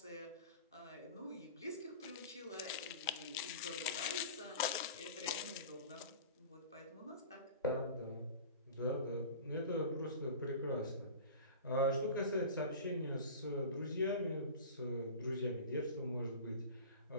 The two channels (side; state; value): both; inverted; correlation -0.37